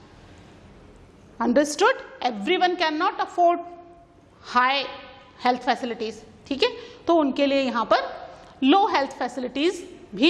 Understood? Everyone can not afford high health facilities, ठीक है, तो उनके लिए यहाँ पर लो हेल्थ फैसिलिटीज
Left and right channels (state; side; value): identical; both; correlation 1.00